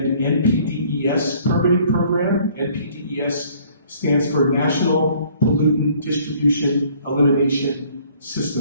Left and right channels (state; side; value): inverted; both; correlation -0.58